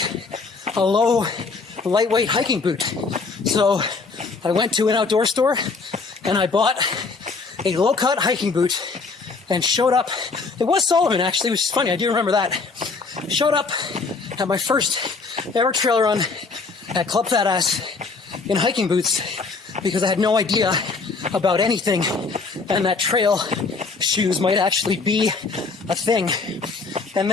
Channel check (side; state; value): right; quieter; 4.3 dB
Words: a low, lightweight hiking boot. So I went to an outdoor store and I bought a low-cut hiking boot and showed up. It was Salomon, actually, which is funny. I do remember that. Showed up at my first ever trail run at Club Fat Ass in hiking boots because I had no idea about anything and that trail shoes might actually be a thing. And